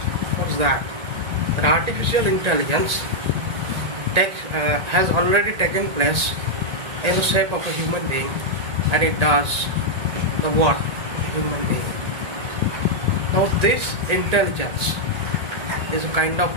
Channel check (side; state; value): left; late; 1.8 ms